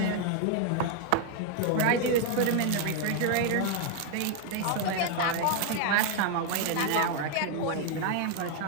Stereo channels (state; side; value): different; both; correlation 0.01